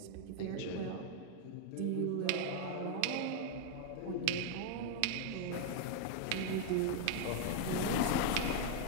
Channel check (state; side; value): different; both; correlation 0.00